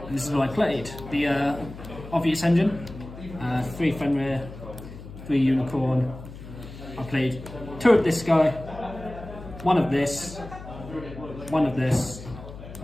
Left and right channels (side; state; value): left; noise; hum, 14 dB below the sound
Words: And this is what I played. The obvious engine, 3 Fenrir, 3 Unicorn. I played 2 of this guy, 1 of this, 1 of this,